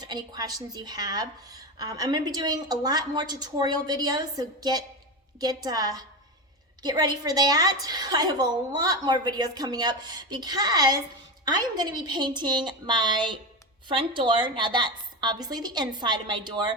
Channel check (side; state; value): both; normal; correlation 0.19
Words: any questions you have. I'm going to be doing a lot more tutorial videos, so get ready for that. I have a lot more videos coming up because I am going to be painting my front door. Now that's obviously the inside of my